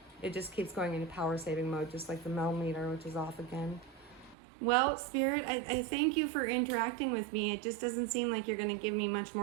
It just keeps going into power saving mode, just like the millimeter, which is off again. Well, Spirit, I thank you for interacting with me. It just doesn't seem like you're going to give me much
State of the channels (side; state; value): left; drops out; at 4.4 s